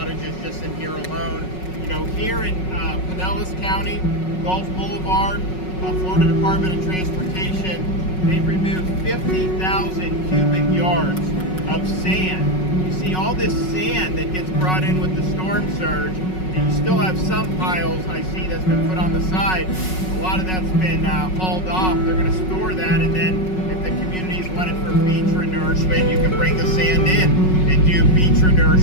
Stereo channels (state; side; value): late; right; 5.4 ms